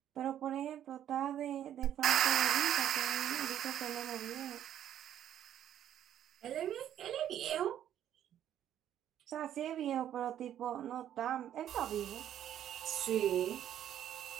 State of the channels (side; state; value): left; quieter; 10.7 dB